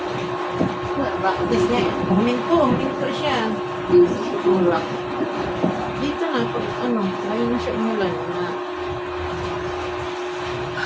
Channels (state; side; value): identical; both; correlation 1.00